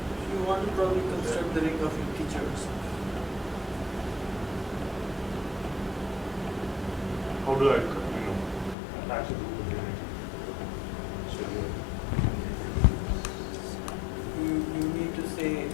You want to probably construct the ring of integers. How do I, attach it to the unity? So you need to say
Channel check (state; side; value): drops out; right; at 8.8 s